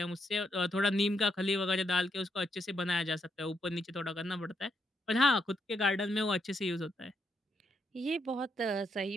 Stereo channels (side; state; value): both; normal; correlation 0.79